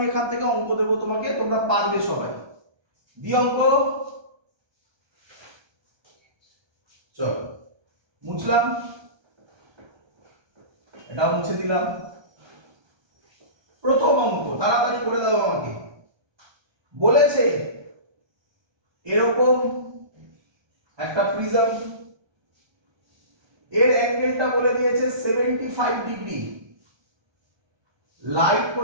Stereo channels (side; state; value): left; late; 1.3 ms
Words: এখান থেকে অঙ্ক দেবো তোমাকে, তোমরা পারবে সবাই। দি অঙ্ক। চলো মুছলাম, এটাও মুছে দিলাম। প্রথম অঙ্ক তাড়াতাড়ি করে দাও আমাকে। বলেছে এরকম একটা প্রিজম, এর অ্যাঙ্গেলটা বলে দিয়েছে 75 ডিগ্রি, লাইট